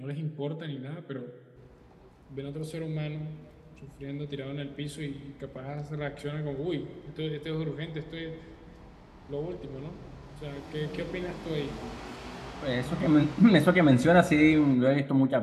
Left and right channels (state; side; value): identical; both; correlation 1.00